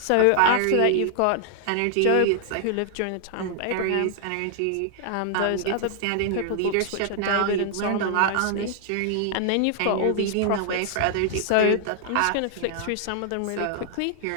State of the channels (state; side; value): different; both; correlation -0.01